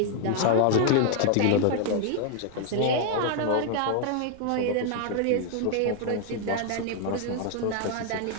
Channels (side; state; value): both; different; correlation 0.00